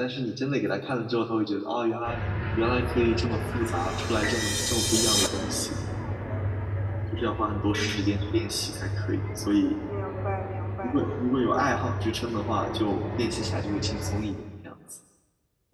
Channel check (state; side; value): identical; both; correlation 1.00